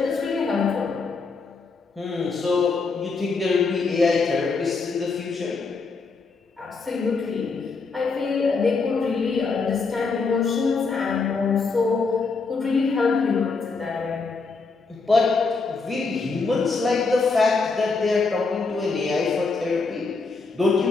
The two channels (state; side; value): quieter; right; 4.3 dB